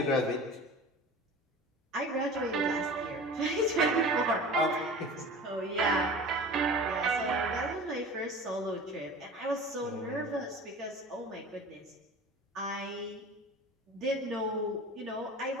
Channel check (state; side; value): normal; both; correlation 0.38